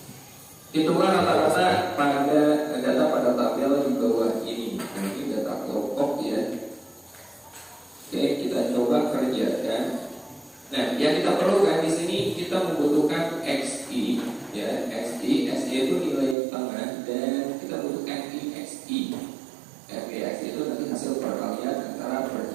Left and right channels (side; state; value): left; drops out; at 16.4 s